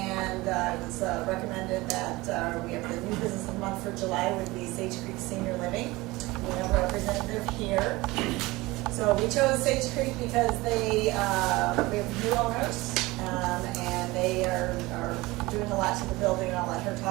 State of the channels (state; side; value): quieter; left; 21.1 dB